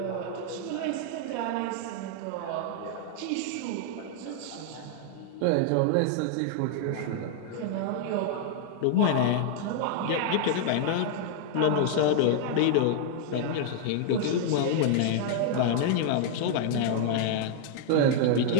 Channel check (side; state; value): both; different; correlation -0.01